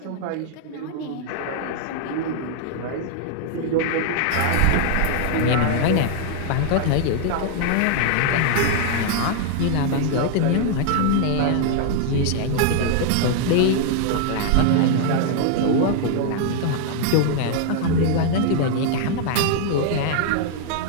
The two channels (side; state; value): both; different; correlation 0.00